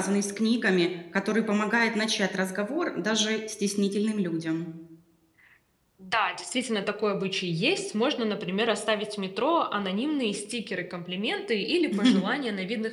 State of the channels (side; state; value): both; identical; correlation 1.00